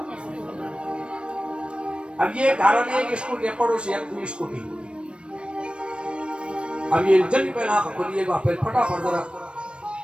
अब ये कारण एक स्कूटी पड़ोसी एक दूसरी स्कूटी अब ये जल्दी पहले आंख खोलिए फिर फटाफट जरा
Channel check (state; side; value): late; left; 0.057 ms